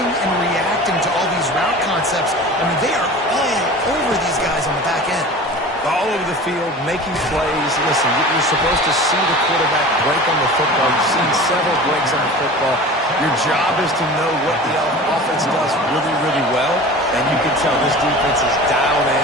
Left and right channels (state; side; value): normal; both; correlation 0.37